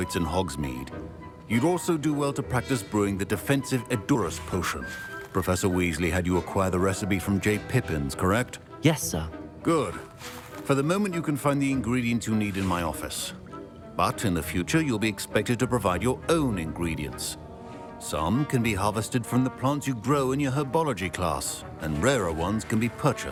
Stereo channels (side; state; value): both; identical; correlation 1.00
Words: in Hogsmeade, you'd also do well to practice brewing the defensive Edurus potion. Professor Weasley had you acquire the recipe from J. Pippin's, correct? Yes, sir. Good. For the moment, you can find the ingredients you need in my office. But in the future, you'll be expected to provide your own ingredients. Some can be harvested from the plants you grow in your Herbology class, and rarer ones can be